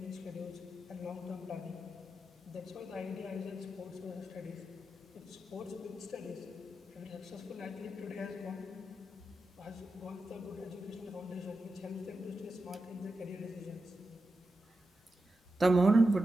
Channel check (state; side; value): normal; both; correlation 0.90